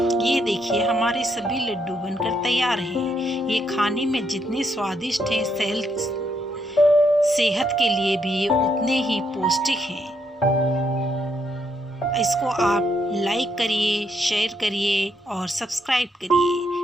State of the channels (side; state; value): both; normal; correlation 0.76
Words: ये देखिए हमारे सभी लड्डू बनकर तैयार हैं। ये खाने में जितने स्वादिष्ट हैं, सेहत के लिए भी उतने ही पौष्टिक हैं। इसको आप लाइक करिए, शेयर करिए और सब्सक्राइब करिए।